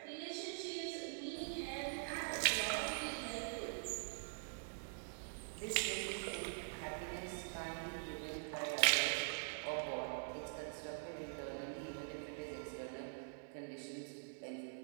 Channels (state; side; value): silent; left; digital silence